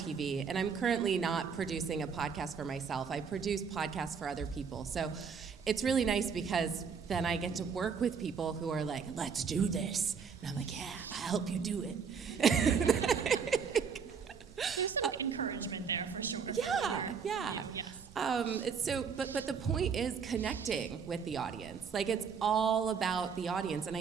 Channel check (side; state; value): left; quieter; 6.2 dB